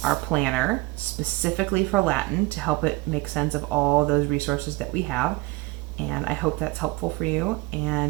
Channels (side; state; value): left; quieter; 21.8 dB